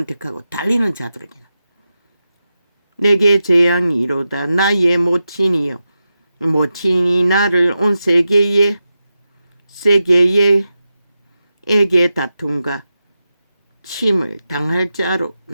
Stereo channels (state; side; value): inverted; both; correlation -0.90